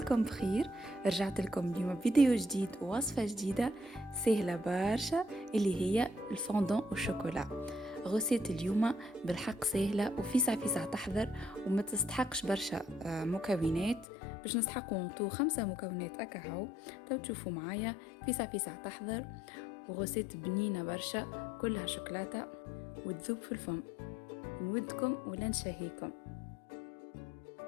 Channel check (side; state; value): right; drops out; at 14.1 s